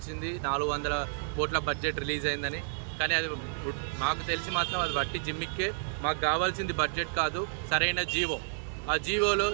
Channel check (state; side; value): silent; left; digital silence